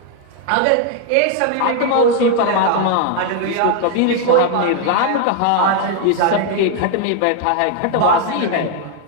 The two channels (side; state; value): both; different; correlation 0.00